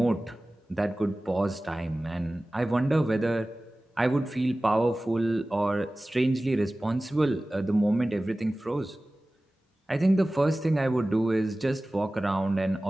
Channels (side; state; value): both; normal; correlation 0.97